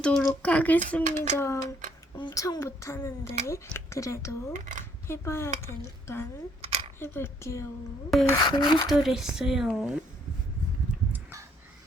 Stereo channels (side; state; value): both; normal; correlation 0.66